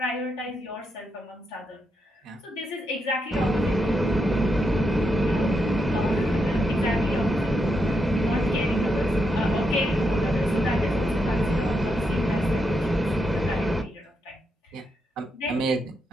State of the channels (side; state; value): both; normal; correlation 0.82